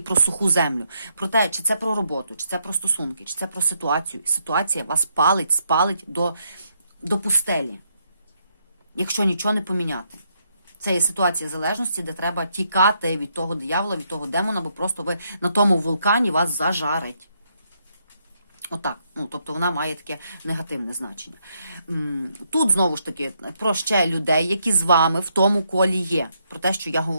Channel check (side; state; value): both; inverted; correlation -0.76